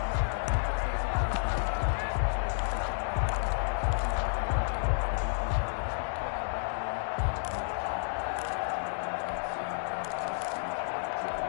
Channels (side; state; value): right; silent; digital silence